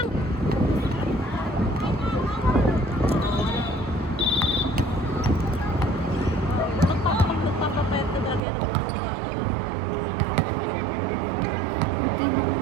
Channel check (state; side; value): drops out; left; at 8.4 s